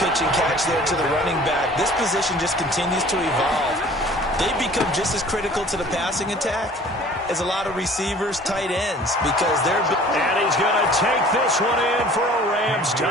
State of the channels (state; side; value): normal; both; correlation 0.49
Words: and catch there to the running back. This position just continues to evolve. They become just as critical to the passing attack as a lot of receivers, tight ends, because they're... And he's going to take this one in for a Rams